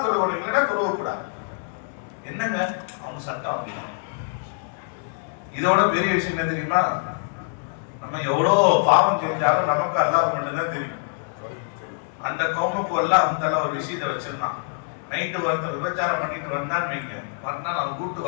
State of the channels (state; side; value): silent; right; digital silence